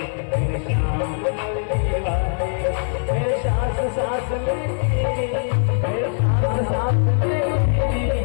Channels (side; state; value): right; silent; 65 dB below the other